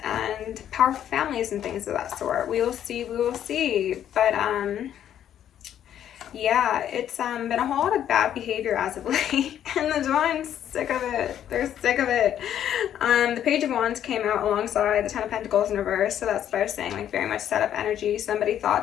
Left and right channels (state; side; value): quieter; right; 10.4 dB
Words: and powerful families and things of that sort. We will see. But yeah, it's been a whole lot of bad behavior as of late, and the Divine's sick of it. They're sick of it. The Page of Wands came out alongside the Ten of Pentacles in reverse, so that's what I was saying, like very much set up energy. Somebody